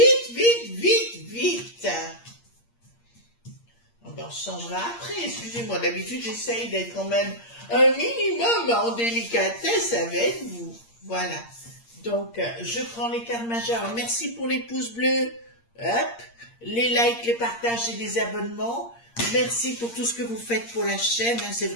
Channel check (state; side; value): late; right; 8.6 ms